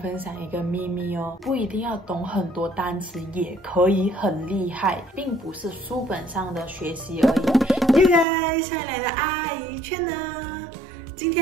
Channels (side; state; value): left; drops out; at 8.2 s